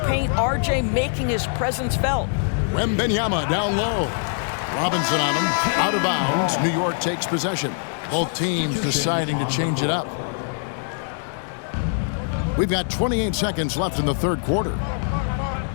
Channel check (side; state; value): right; silent; 63 dB below the other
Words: paint, RJ making his presence felt. Wembanyama down low. Robinson on him. Out of bounds. New York takes possession. Both teams deciding to change it up. We've got 28 seconds left in the third quarter.